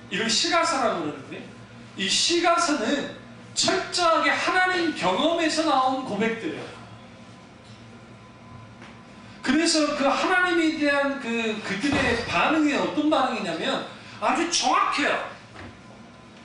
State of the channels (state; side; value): identical; both; correlation 1.00